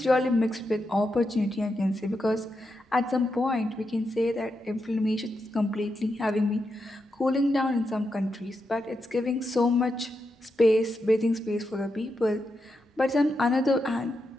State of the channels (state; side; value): normal; both; correlation 0.86